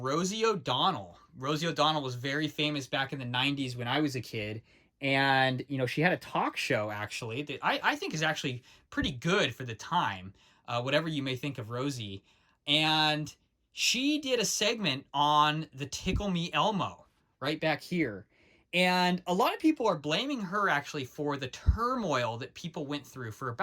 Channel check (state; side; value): identical; both; correlation 1.00